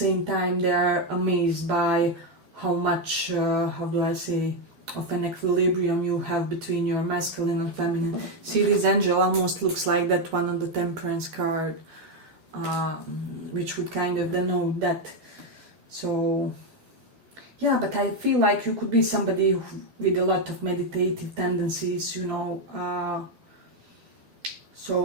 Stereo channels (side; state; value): left; late; 12 ms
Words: time they are amazed by how much, how do I say, of an equilibrium you have between your masculine and feminine. See, this angel almost looks like that one on the Temperance card, which would kind of denote that. So yeah, but I feel like you could be somebody with a lot of meditative tendencies, you know.